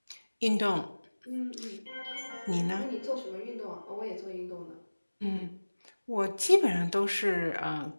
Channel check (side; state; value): both; inverted; correlation -1.00